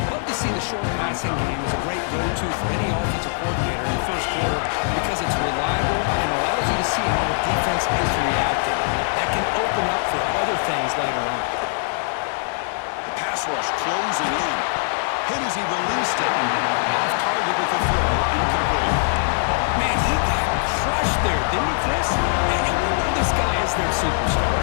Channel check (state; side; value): silent; right; digital silence